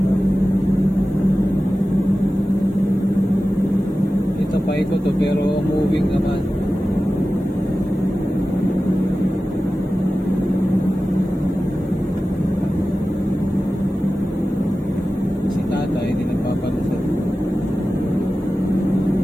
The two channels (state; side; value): normal; both; correlation 0.95